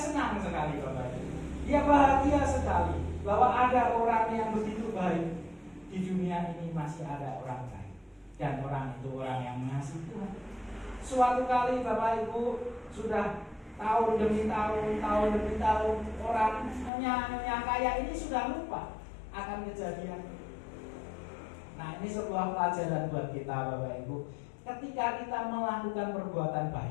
sekali Bapak Ibu. Dia bahagia sekali bahwa ada orang yang begitu baik di dunia ini, masih ada orang baik dan orang itu orang yang mengasihi Tuhan. Suatu kali Bapak Ibu sudah tahun demi tahun orang nyonya kaya ini sudah lupa akan kejadian. Nah, ini sebuah pelajaran buat kita Bapak Ibu. Ketika kita melakukan perbuatan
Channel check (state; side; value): drops out; right; at 16.9 s